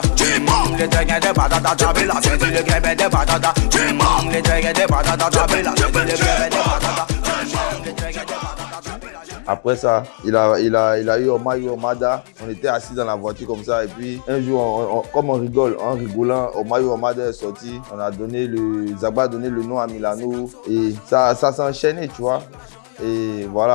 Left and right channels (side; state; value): right; silent; 68 dB below the other